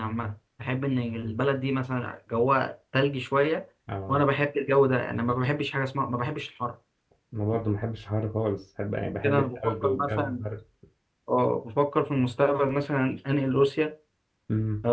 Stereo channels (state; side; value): identical; both; correlation 1.00